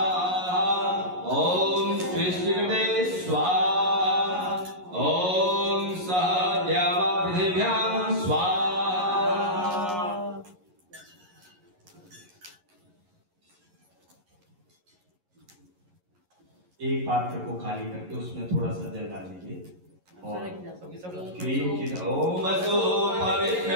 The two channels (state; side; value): late; left; 11 ms